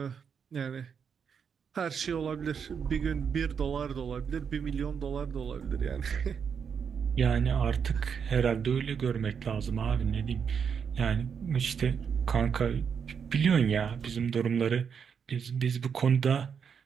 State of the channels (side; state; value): left; quieter; 6.8 dB